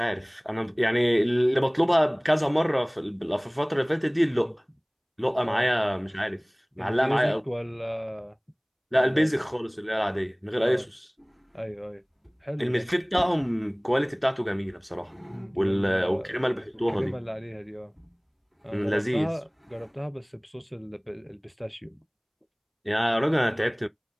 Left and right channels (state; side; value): identical; both; correlation 1.00